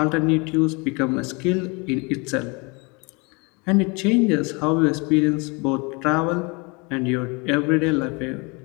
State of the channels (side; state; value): right; quieter; 29.3 dB